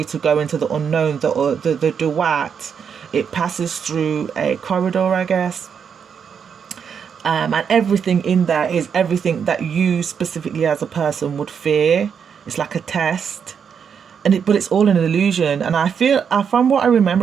to go into the unknown. The duat, it passes through a corridor, I guess, and everything in there is everything that you specifically as a person would fear. It's like a test, but it's all an illusion. And I feel, from what I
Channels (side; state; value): left; quieter; 7.1 dB